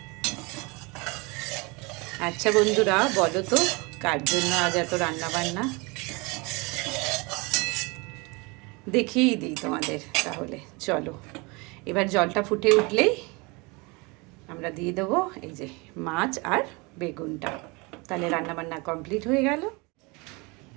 আচ্ছা বন্ধুরা, বলো তো কার জন্য আজ এত রান্না বান্না? দেখিয়েই দিই তোমাদের তাহলে। চলো এবার জলটা ফুটে উঠলেই আমরা দিয়ে দেবো এই যে মাছ আর বেগুনটা। তাহলে রান্নাবান্না কমপ্লিট হয়ে গেল।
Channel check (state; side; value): quieter; left; 27.4 dB